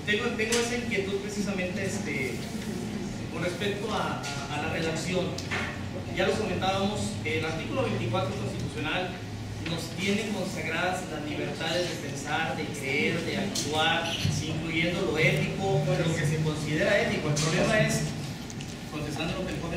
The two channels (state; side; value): identical; both; correlation 1.00